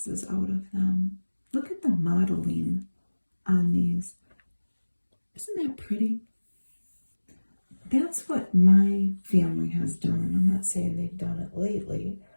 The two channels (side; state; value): both; inverted; correlation -1.00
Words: out of them. Look at the modeling on these. Isn't that pretty? That's what my family has done. I'm not saying they've done it lately,